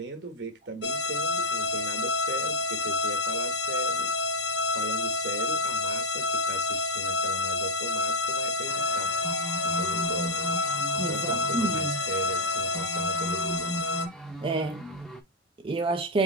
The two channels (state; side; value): normal; both; correlation 0.00